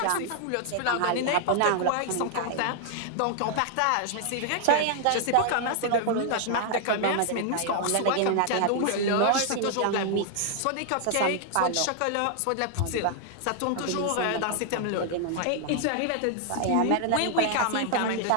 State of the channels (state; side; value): different; both; correlation 0.00